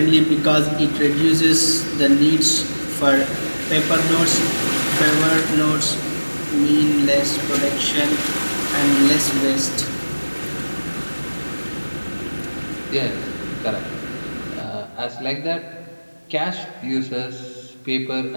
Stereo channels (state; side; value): inverted; both; correlation -1.00